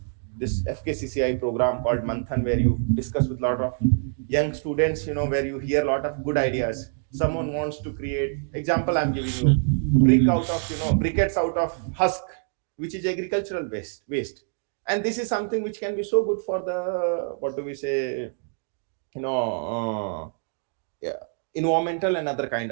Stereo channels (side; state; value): left; silent; 61 dB below the other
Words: this FKCCI program called Manthan, where you discuss with a lot of young students, where you hear a lot of good ideas. Someone wants to create, example I'm giving you, briquettes out of husk, which is agricultural waste. And this is something which can be so good for the, what do we say, you know yeah, environmental and other kind